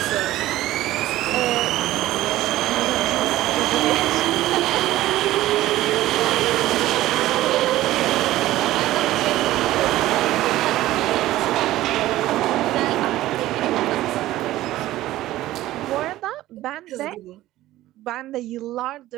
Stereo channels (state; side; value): quieter; left; 15.4 dB